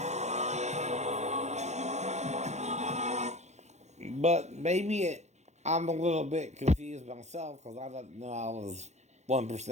But I'm a little bit confused myself because I didn't know I was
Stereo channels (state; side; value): late; left; 0.33 ms